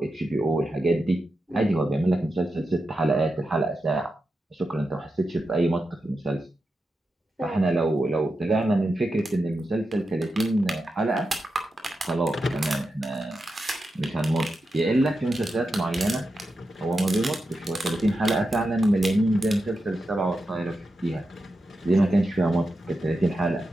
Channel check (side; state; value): both; normal; correlation 0.89